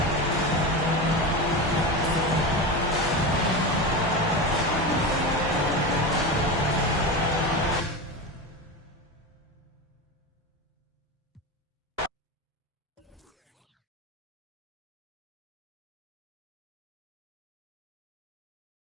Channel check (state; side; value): normal; both; correlation 0.22